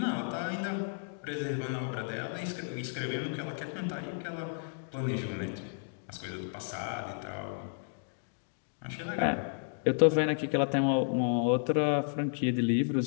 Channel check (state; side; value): silent; right; digital silence